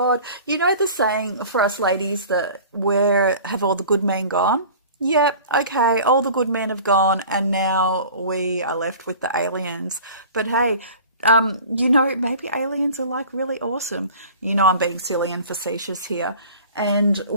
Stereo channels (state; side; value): inverted; both; correlation -0.42